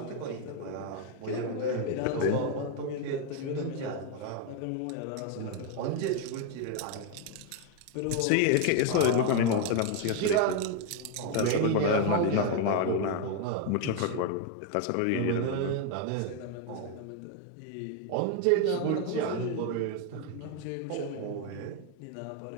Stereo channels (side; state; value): both; different; correlation 0.01